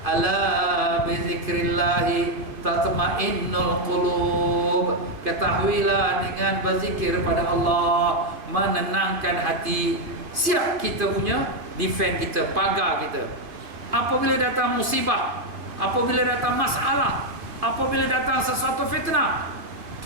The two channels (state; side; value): late; left; 2.5 ms